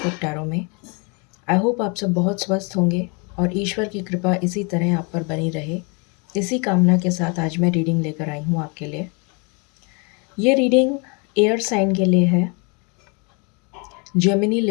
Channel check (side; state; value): right; quieter; 32.8 dB